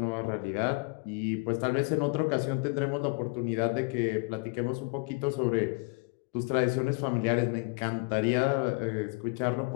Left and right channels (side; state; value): right; quieter; 30.6 dB